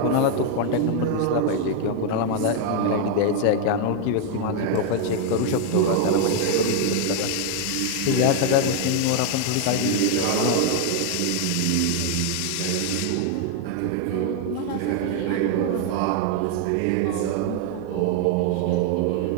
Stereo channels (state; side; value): different; both; correlation 0.00